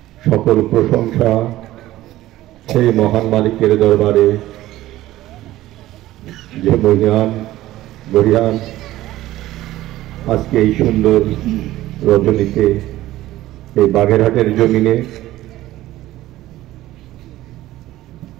সকল প্রশংসা সেই মহান মালিকের দরবারে যে মহিয়ান আজকে এই সুন্দর রজনীতে এই বাগেরহাটের জমিনে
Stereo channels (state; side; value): quieter; left; 15.5 dB